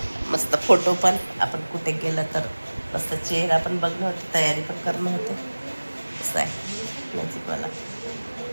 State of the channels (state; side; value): inverted; both; correlation -1.00